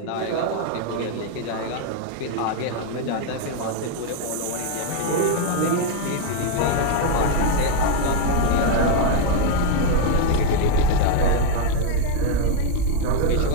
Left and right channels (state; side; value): different; both; correlation 0.01